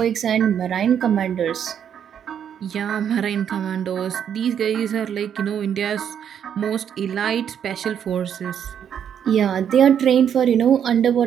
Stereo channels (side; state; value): left; quieter; 8.7 dB